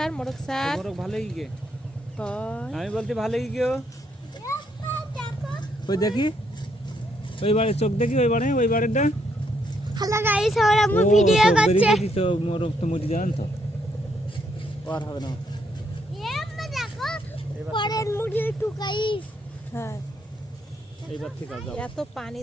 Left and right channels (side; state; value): both; normal; correlation 0.74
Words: ভালোই গে, আমি বলতে ভালোই গে। ওই দেখি ওই বারে চোখ দেখি, ওই বারেটা। হ্যালো গাইস, আমরা ভিডিও করছি। তো মোরক তো মরি যান তো আর হবে না। এমন দেখো পরের মুড়ি টুকাইস। হ্যাঁ এইবার ঠিক আছে। এত পানি